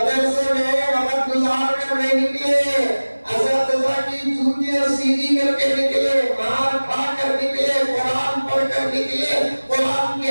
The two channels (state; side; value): inverted; both; correlation -1.00